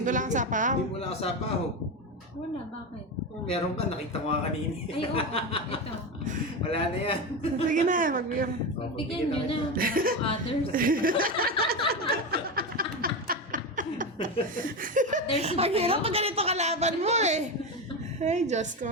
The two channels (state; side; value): normal; both; correlation 0.18